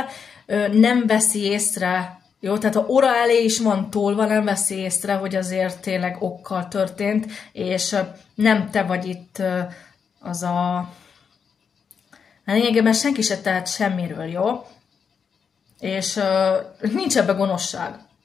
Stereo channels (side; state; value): right; quieter; 6.5 dB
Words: nem veszi észre. Jó, tehát ha óra elé is van tolva, nem veszi észre, hogy azért tényleg okkal történt, és nem te vagy itt az a... Lényegében senki se tehet semmiről, jó? És nincs ebbe gonoszság.